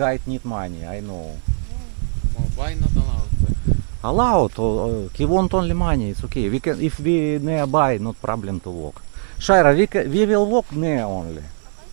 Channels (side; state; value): left; silent; digital silence